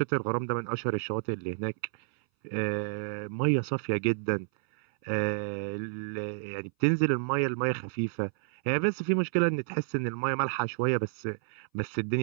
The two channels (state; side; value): silent; left; 58 dB below the other